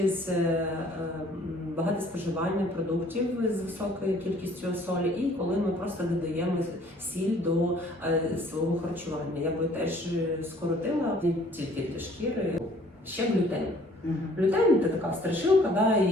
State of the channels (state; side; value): normal; both; correlation 0.56